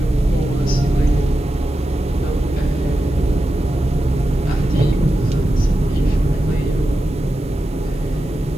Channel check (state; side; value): normal; both; correlation 0.91